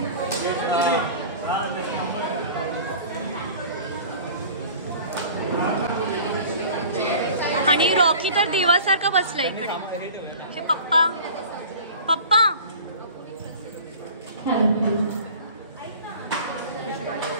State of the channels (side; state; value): both; inverted; correlation -0.42